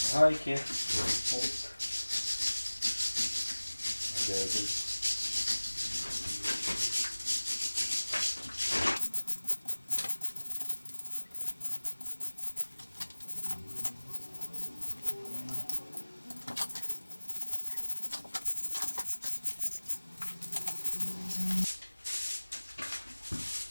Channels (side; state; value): both; inverted; correlation -1.00